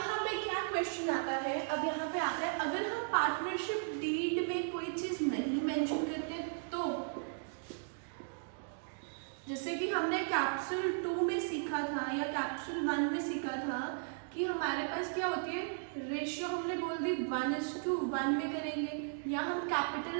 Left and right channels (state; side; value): silent; left; digital silence